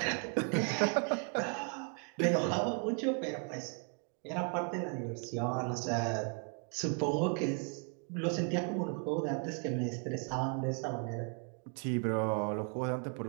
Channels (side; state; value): left; quieter; 39.4 dB